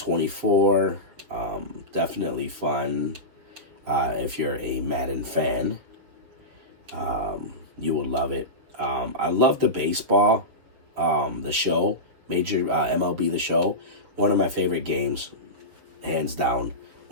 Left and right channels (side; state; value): left; late; 7.2 ms